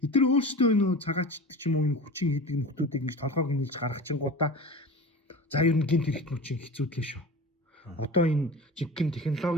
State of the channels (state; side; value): normal; both; correlation 0.33